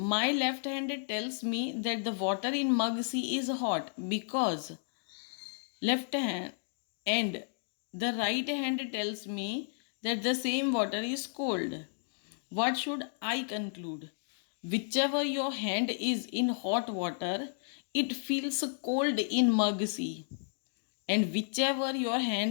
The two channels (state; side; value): silent; right; digital silence